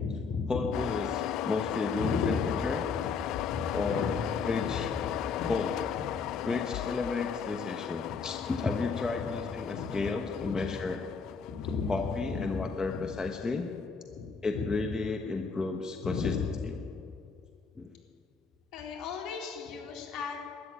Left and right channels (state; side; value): quieter; right; 5.1 dB